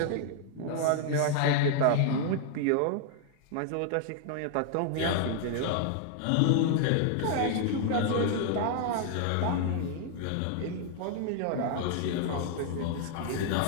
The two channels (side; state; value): both; different; correlation 0.00